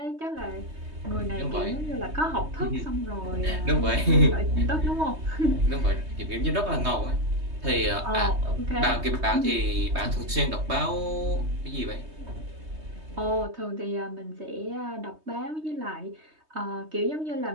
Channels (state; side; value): late; left; 3.2 ms